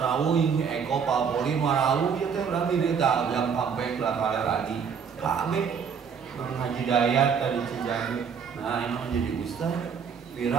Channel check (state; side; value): quieter; left; 6.7 dB